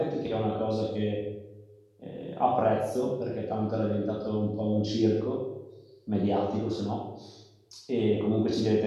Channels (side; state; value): both; identical; correlation 1.00